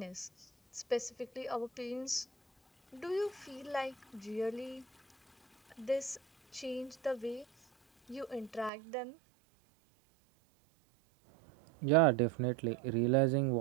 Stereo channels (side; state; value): left; drops out; at 8.7 s